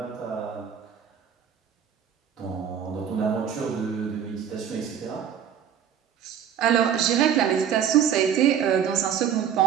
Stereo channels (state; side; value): quieter; left; 8.7 dB